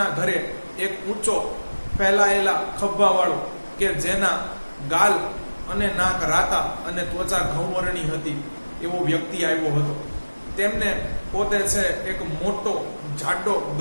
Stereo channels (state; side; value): inverted; both; correlation -1.00